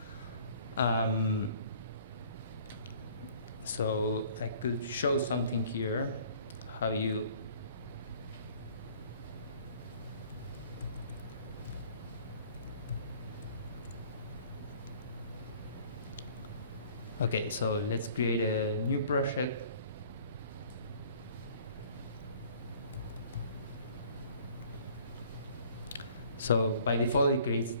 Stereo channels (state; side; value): inverted; both; correlation -0.54